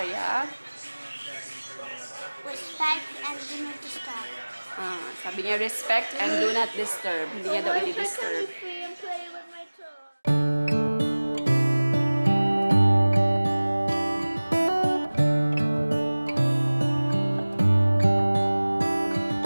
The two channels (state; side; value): inverted; both; correlation -1.00